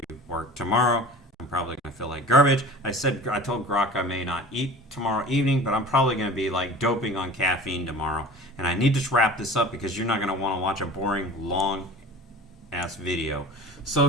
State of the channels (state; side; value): normal; both; correlation 0.40